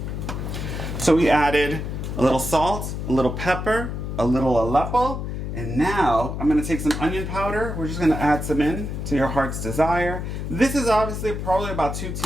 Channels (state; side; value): noise; left; hum, 5 dB below the sound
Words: So we added a little salt, a little pepper, a little Aleppo, and now I'm going to take some onion powder. We're just going to add some in to your heart's desire. This is obviously probably about 2